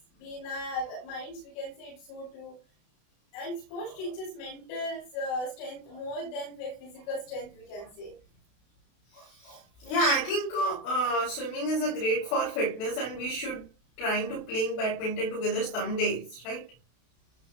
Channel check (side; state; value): right; late; 32 ms